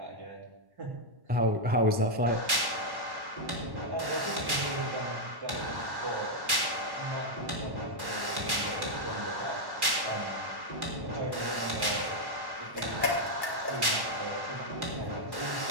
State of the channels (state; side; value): late; left; 1.1 ms